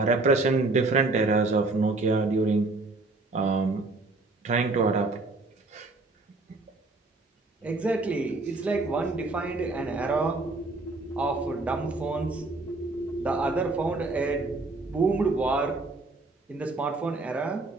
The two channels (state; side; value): quieter; left; 3.3 dB